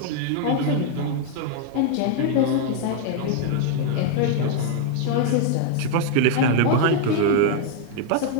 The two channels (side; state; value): both; different; correlation 0.00